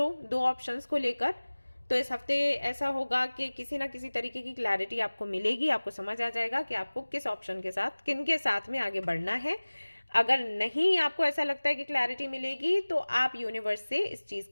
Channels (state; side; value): inverted; both; correlation -1.00